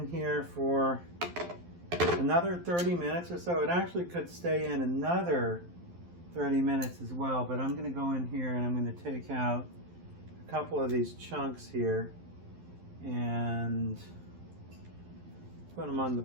here for another 30 minutes or so. It actually could stay in another 30 minutes as well, but I'm going to go in here and I'm going to take out a couple of these chunks here and put them on the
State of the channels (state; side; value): late; left; 12 ms